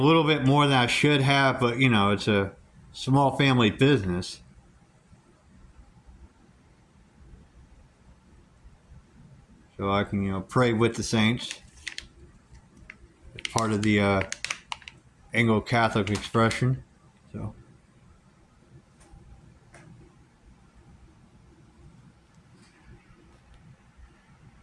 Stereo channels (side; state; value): both; identical; correlation 1.00